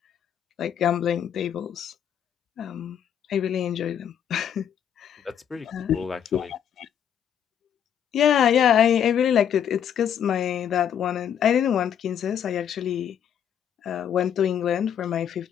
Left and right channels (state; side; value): quieter; right; 9.0 dB